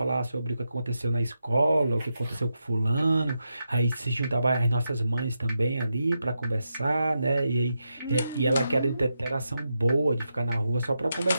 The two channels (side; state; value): both; inverted; correlation -0.86